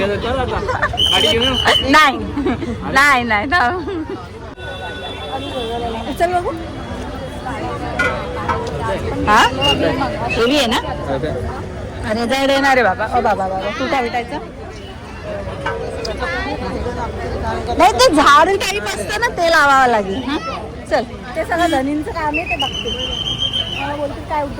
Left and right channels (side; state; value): both; identical; correlation 1.00